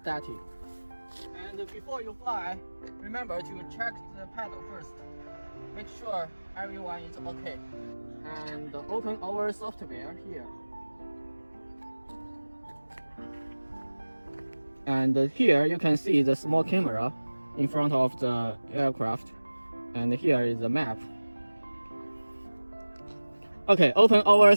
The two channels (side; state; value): both; inverted; correlation -1.00